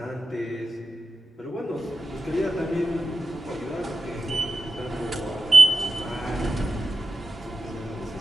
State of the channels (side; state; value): both; normal; correlation 0.90